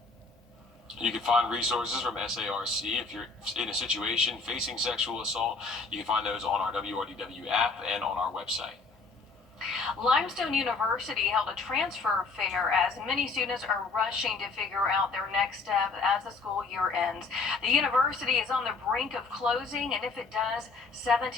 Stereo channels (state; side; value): quieter; right; 4.1 dB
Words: You can find resources from SARC if you're in a situation facing sexual assault. You can find those on our WRDW app and on our website. Limestone University held a transfer fair as many students are rushing to figure out their next step as the school year ends. The university is on the brink of closing, and if it does,